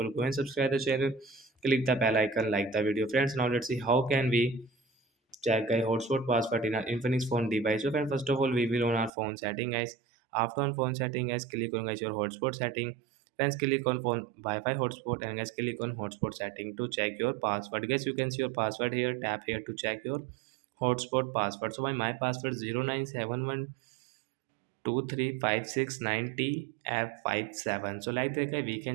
go and subscribe the channel, click the bell icon, like the video friends. Now let's see how can we check a hotspot password in our Infinix phone device. So friend, first of all, we will on our phone setting guys. After on phone setting guys, click on guys your hotspot setting. Friends, click on phone Wi-Fi hotspot and guys click on hotspot setting to check your password. Guys, you can see your password here. Tap here to check your hotspot password. So my password 0971123569T F57. So like that guys, we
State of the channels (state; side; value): drops out; left; at 9.1 s